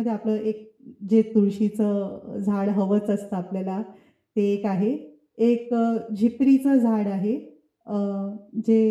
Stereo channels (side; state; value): both; identical; correlation 1.00